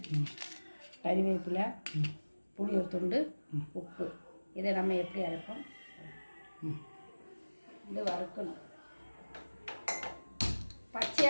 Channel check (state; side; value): inverted; both; correlation -1.00